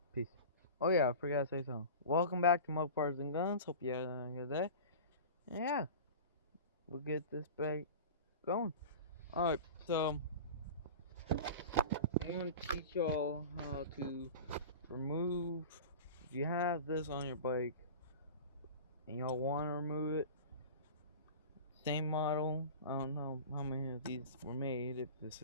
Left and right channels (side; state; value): both; inverted; correlation -0.34